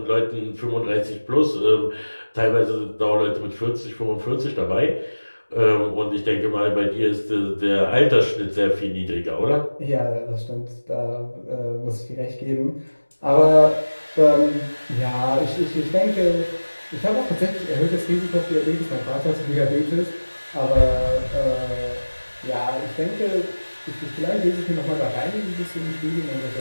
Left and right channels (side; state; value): both; inverted; correlation -1.00